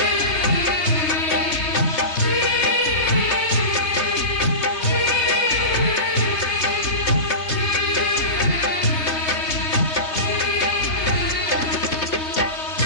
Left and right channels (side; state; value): right; late; 3.3 ms